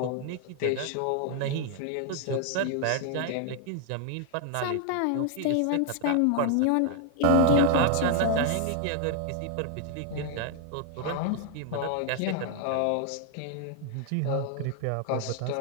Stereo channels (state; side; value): different; both; correlation 0.00